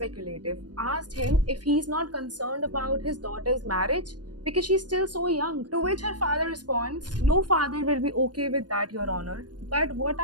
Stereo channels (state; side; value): late; left; 0.69 ms